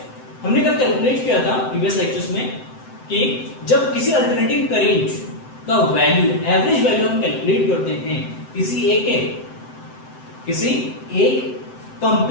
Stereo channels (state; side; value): late; right; 7.8 ms